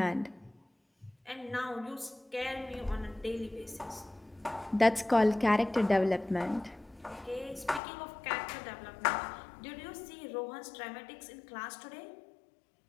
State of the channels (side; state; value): right; drops out; at 7.8 s